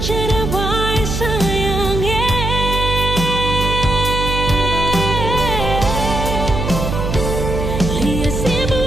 baik sayangnya. Lihat si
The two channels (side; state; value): right; noise; hum, 3 dB below the sound